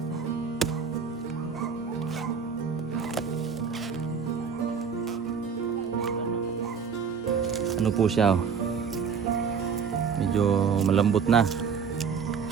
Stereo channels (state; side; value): quieter; left; 6.3 dB